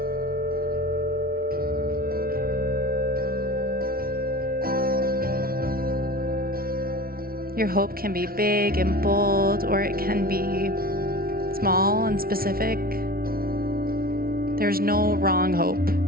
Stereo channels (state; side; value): late; left; 0.43 ms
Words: Your hope can be big and bold, or it can be small and specific. There's no wrong hope